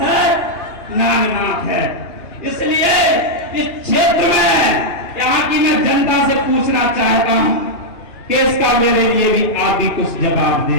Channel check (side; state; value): right; late; 2.9 ms